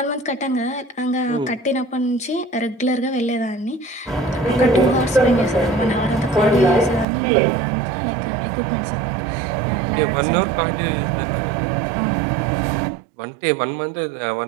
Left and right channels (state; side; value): drops out; left; at 7.1 s